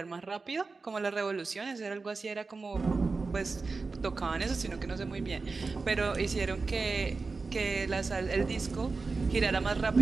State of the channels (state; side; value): quieter; left; 4.1 dB